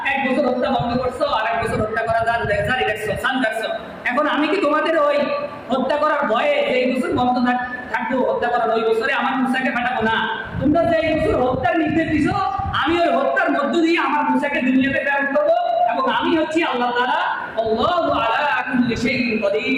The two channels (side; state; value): both; identical; correlation 1.00